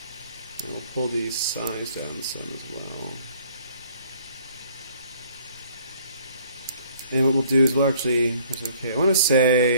and we'll pull the size down some as well. And what we'll do is we'll actually, okay, I want to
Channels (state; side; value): inverted; both; correlation -0.59